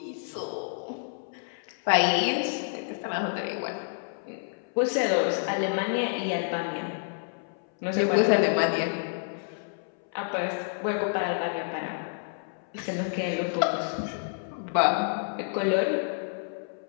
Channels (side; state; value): right; silent; 59 dB below the other